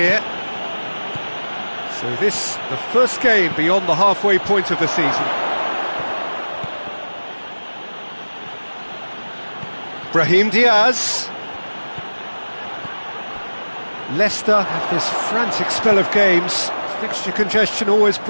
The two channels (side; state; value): both; inverted; correlation -1.00